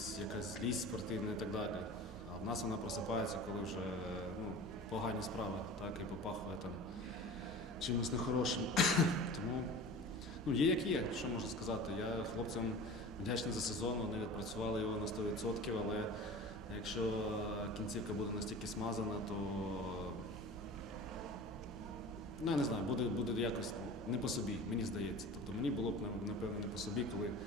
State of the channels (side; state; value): left; noise; hum, 27 dB below the sound